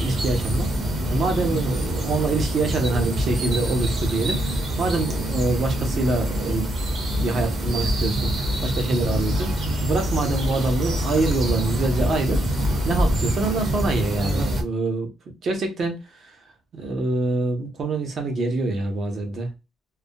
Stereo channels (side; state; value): both; normal; correlation 0.78